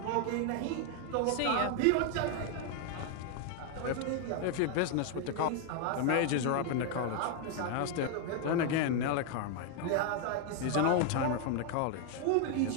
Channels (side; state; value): both; different; correlation 0.00